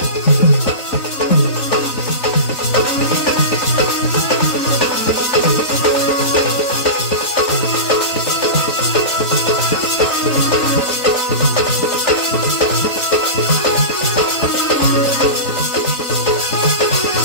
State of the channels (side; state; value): right; late; 3.5 ms